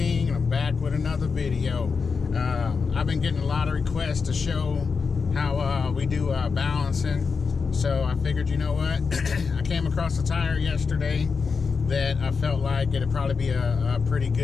and I'm back with another video. I've been getting a lot of requests to show how we do balancing, so I figured, you know what, I came across a tire yesterday that I felt like it'd probably be a pretty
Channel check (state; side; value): quieter; right; 5.2 dB